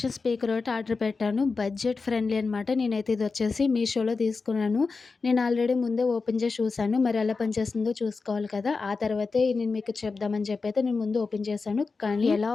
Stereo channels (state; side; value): quieter; right; 4.4 dB